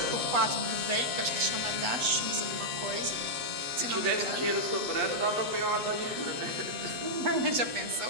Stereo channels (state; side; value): late; left; 8.1 ms